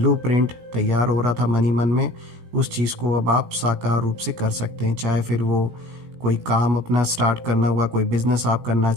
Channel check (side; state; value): left; late; 17 ms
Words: तैयार हो रहा था मन ही मन में, उस चीज़ को अब आप साकार रूप से कर सकते हैं। चाहे फिर वो कोई काम अपना स्टार्ट करना हुआ, कोई बिजनेस आप करना